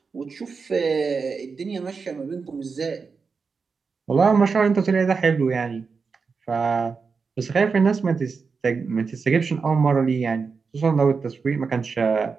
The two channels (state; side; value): quieter; left; 5.0 dB